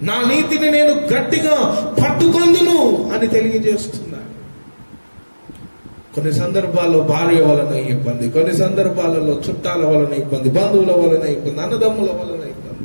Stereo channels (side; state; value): both; inverted; correlation -1.00